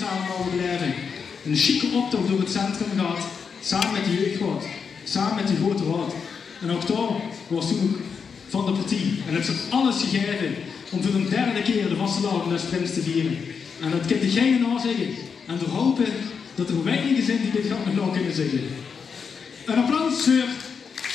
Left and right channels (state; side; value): quieter; right; 6.0 dB